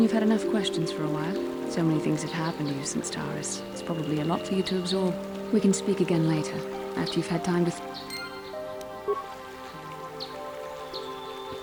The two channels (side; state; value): both; identical; correlation 1.00